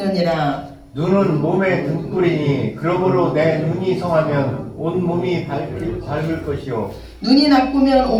눈은 몸의 등불이니 그러므로 내 눈이 성하면 온 몸이 밝을 것이요 눈이 나쁘면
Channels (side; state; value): both; identical; correlation 1.00